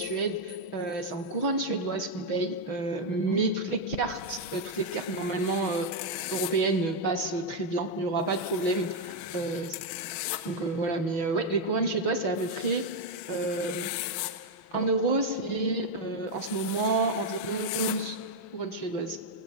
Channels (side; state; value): right; late; 6.2 ms